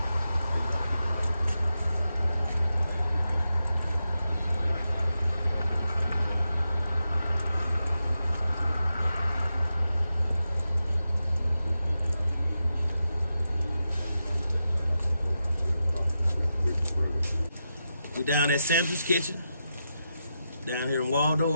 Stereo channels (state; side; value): inverted; both; correlation -0.88